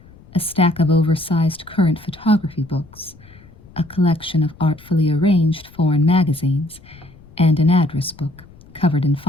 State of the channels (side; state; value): left; noise; rumble, 24 dB below the sound